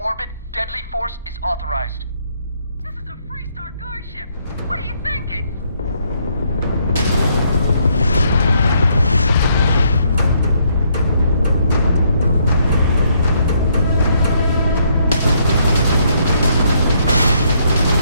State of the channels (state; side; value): inverted; both; correlation -0.71